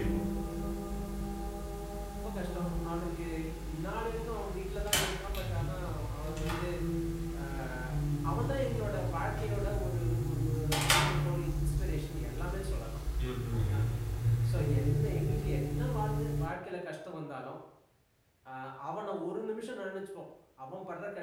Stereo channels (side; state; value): both; identical; correlation 1.00